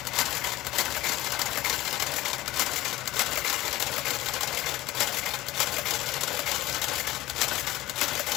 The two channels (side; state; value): right; quieter; 17.0 dB